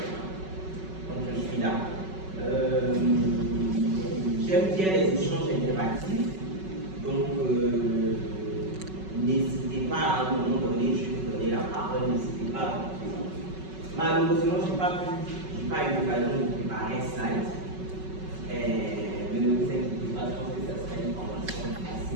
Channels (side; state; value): left; late; 5.3 ms